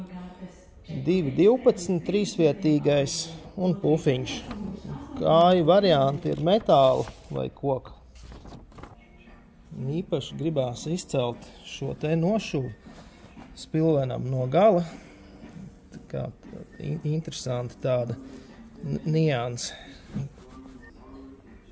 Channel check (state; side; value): identical; both; correlation 1.00